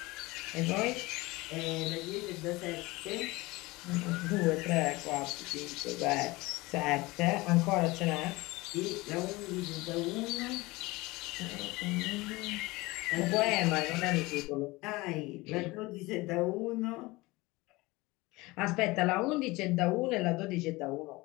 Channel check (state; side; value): quieter; right; 21.9 dB